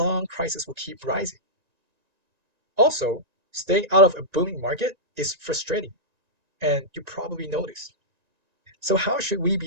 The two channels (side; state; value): left; late; 1.9 ms